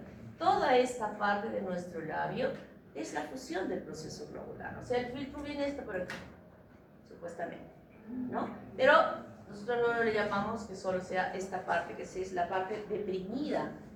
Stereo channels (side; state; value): both; identical; correlation 1.00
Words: toda esta parte de nuestro labio es la fusión del proceso globular. O sea, el filtro viene esto por aquí, supuestamente, ¿no? Pero nosotros no le llamamos que solo sea esta parte, que es la parte deprimida